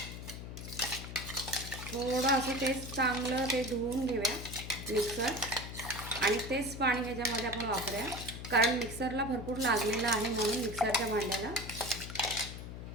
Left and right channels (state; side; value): noise; left; hum, 9 dB below the sound